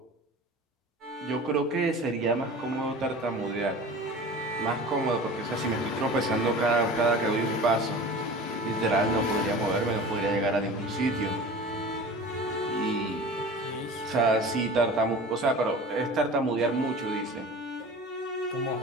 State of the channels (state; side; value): normal; both; correlation 0.38